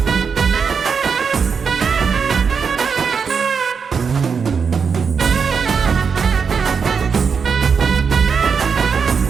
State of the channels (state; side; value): quieter; left; 6.0 dB